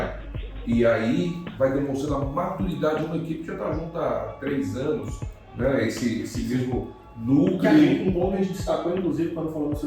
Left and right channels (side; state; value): both; identical; correlation 1.00